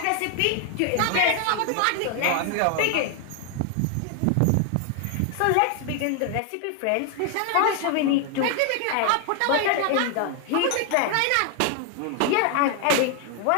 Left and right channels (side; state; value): both; different; correlation 0.00